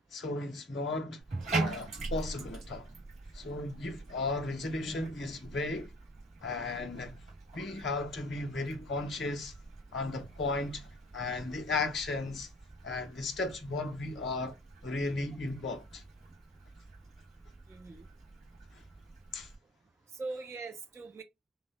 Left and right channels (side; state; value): both; normal; correlation 0.48